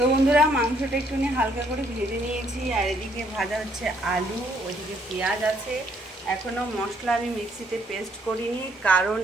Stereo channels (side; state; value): both; normal; correlation 0.68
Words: বন্ধুরা মাংসটা একটুখানি হালকা করে ভেজে নিয়েছি, আর এদিকে ভাজা হচ্ছে আলু, ওইদিকে পেঁয়াজ আছে। এখনও মশলা আমি মিক্সিতে পেস্ট করিনি, কারণ